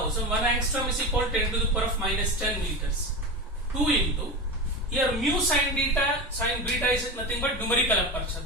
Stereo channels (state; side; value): normal; both; correlation 0.23